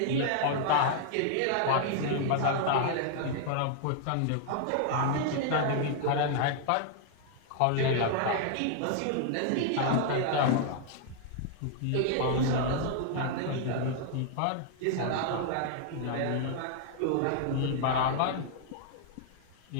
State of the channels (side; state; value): both; different; correlation -0.01